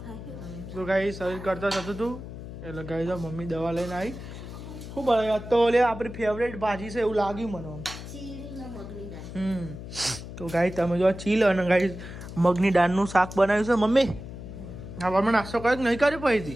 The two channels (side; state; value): left; noise; hum, 11 dB below the sound